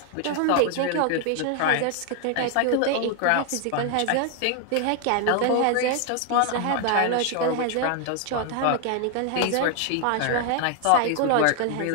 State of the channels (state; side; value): different; both; correlation 0.00